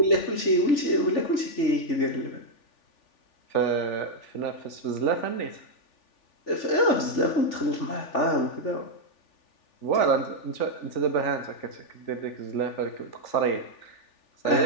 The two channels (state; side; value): late; right; 3.4 ms